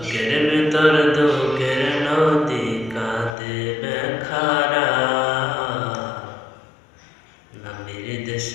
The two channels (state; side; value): drops out; right; at 3.4 s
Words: ভেতর দুঃখের নদী কাঁদে বেখারা, নবীর